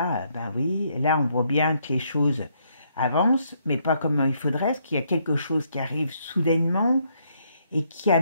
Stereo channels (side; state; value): both; inverted; correlation -0.73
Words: ben oui, là, on voit bien que les choses avancent, mais pas comme il faudrait, parce qu'il y a quelque chose qui arrive soudainement et qui